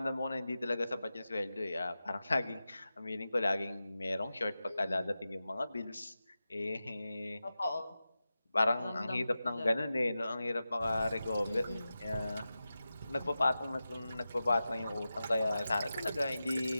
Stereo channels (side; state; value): both; inverted; correlation -0.93